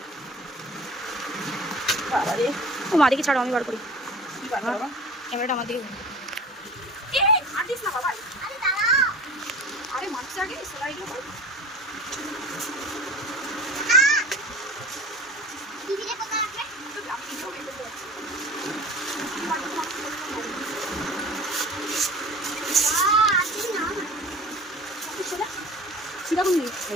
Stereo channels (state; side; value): normal; both; correlation 0.39